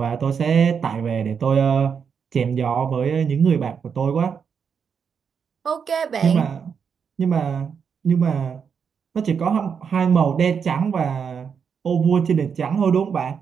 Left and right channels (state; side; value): quieter; left; 6.7 dB